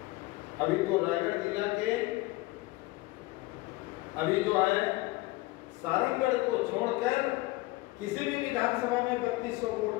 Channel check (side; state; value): right; quieter; 20.5 dB